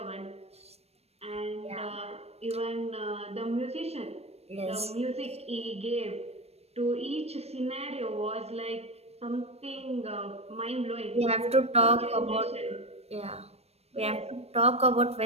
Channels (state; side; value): late; left; 0.30 ms